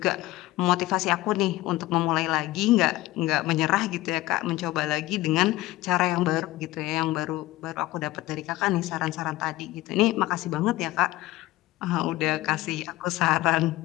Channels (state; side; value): quieter; right; 17.7 dB